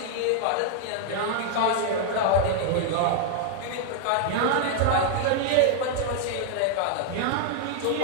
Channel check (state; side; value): different; both; correlation 0.00